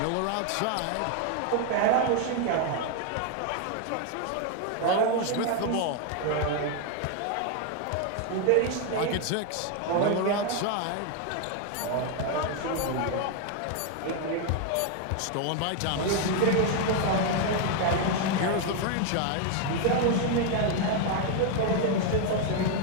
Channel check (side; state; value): both; different; correlation 0.01